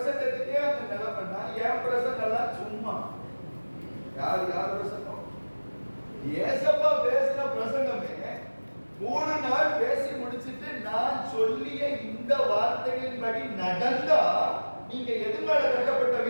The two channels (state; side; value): inverted; both; correlation -1.00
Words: அந்த நிலைமைன்னா, என் பிரசங்கம் எல்லாம் சும்மா. யார் பிரசங்கம்? ஏசப்பா பேசின பிரசங்கமே 3 நாள் பேசி முடிச்சிட்டு, நான் சொல்லிய இந்த வார்த்தைகளின்படி நடந்தா நீங்க எது மேல கட்டப்பட்ட